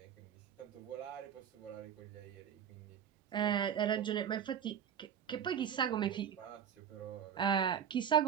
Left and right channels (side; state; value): left; quieter; 8.5 dB